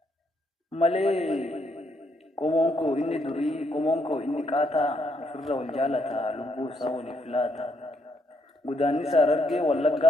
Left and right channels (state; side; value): normal; both; correlation 0.75